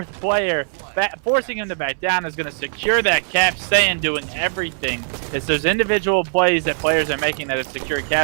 player. Forcing him to back down is going to secure that cap. Saiyan doing everything. It's those individual plays that players are making that have secured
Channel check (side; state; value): left; silent; 62 dB below the other